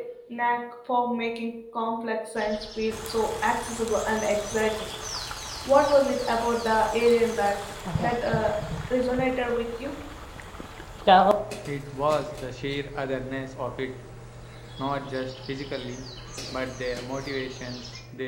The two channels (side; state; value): both; identical; correlation 1.00